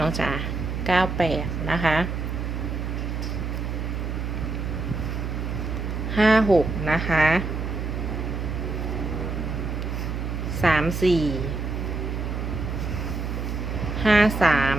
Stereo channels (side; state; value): right; noise; hum, 3 dB below the sound